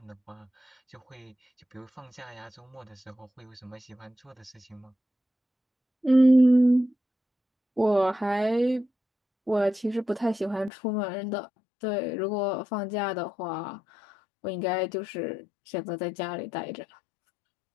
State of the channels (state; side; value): drops out; right; at 10.7 s